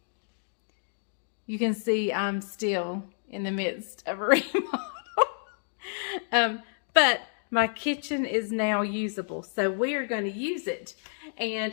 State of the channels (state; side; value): silent; right; digital silence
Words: You can see I'm still in the midst of a remodel. But my kitchen is now usable, so we are going to use it.